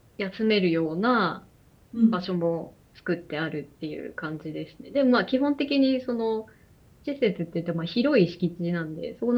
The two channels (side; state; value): both; identical; correlation 1.00